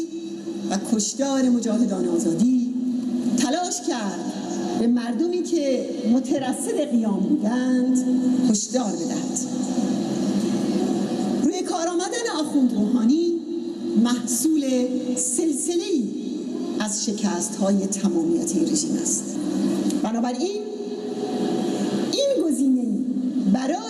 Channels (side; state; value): both; identical; correlation 1.00